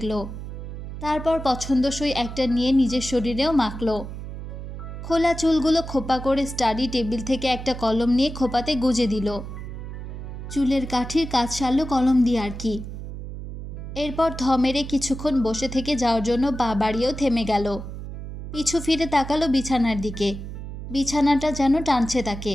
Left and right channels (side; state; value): right; noise; hum, 9 dB below the sound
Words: তারপর পছন্দসই একটা নিয়ে নিজের শরীরেও মাখল। খোলা চুলগুলো খোপা করে স্টাডি টেবিল থেকে একটা কলম নিয়ে খোপাতে গুজে দিল। চুলের কাঠির কাজ সারল কলম দিয়ে আর কি। এরপর থ মেরে কিছুক্ষণ বসে থেকে যাওয়ার জন্য পা বাড়িয়েও থেমে গেল। পিছু ফিরে তাকালো বিছানার দিকে। বিছানাটা যেন টানছে তাকে।